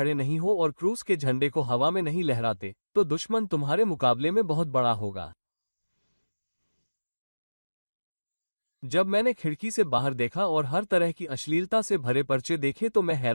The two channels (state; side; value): inverted; both; correlation -1.00